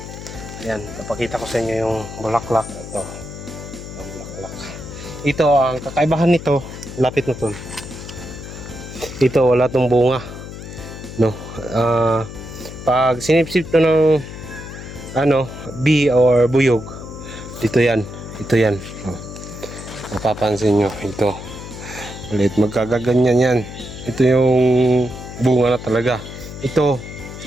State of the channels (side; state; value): left; noise; hum, 11 dB below the sound